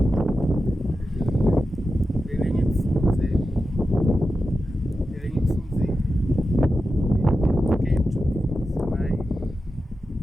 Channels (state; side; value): normal; both; correlation 0.91